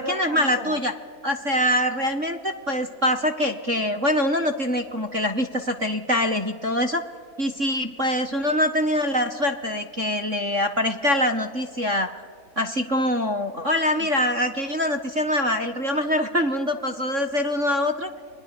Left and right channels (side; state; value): left; late; 3.6 ms